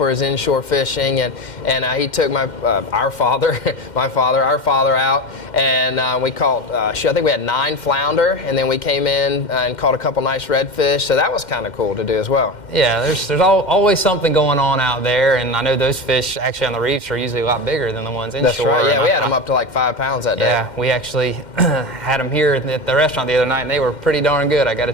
his inshore fishing. And he took our father out, and we caught. I think we had 9 flounder, and then we came in and caught a couple nice redfish. So that was kind of cool to do as well. Yeah, there's always something going on out there, and I know those fish actually on the reefs are usually a lot bigger than the ones inshore. That's right. Yeah, we had them up to like 5 pounds that day. Yeah, we actually had them here at the restaurant the other night, and they were pretty darn good, I got to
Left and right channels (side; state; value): right; late; 2.1 ms